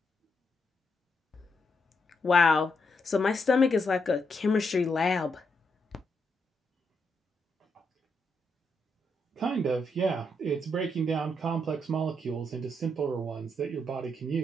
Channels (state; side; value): normal; both; correlation 0.79